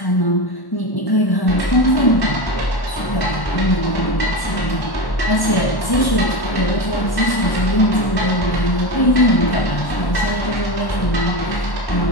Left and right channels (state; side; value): late; right; 1.1 ms